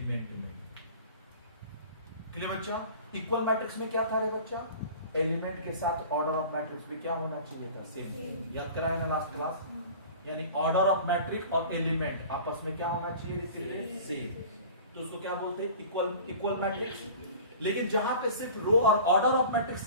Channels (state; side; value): inverted; both; correlation -0.41